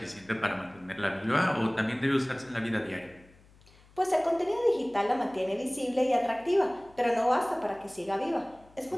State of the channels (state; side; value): noise; left; hum, 27 dB below the sound